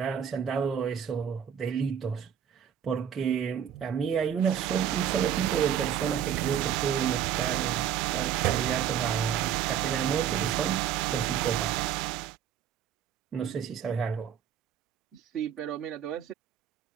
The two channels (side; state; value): left; quieter; 9.1 dB